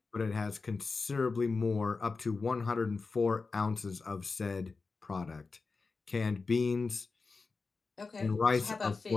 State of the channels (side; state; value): right; quieter; 4.3 dB